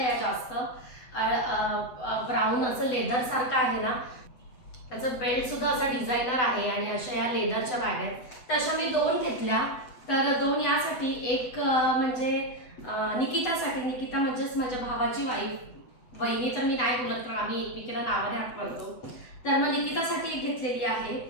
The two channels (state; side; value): late; right; 7.9 ms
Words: जास्त. ब्राऊन असं लेदर सारखं आहे ना, त्याचं बेल्ट सुद्धा असा डिझायनर आहे आणि अशा या लेदरच्या बॅग आहेत. तर अशा मी 2 घेतल्या. तर 2 यासाठी, एक म्हणजे निकितासाठी, निकिता म्हणजेच माझ्या भावाची वाईफ, वहिनी तर मी नाही बोलत कारण आम्ही एकमेकीला नावाने हात करतो. तर मग निकितासाठी एक घेतलेली आहे